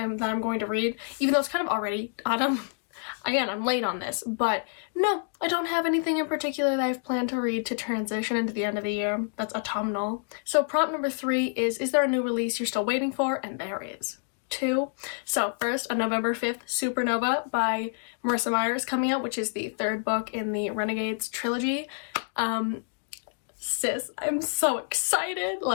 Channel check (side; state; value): right; silent; digital silence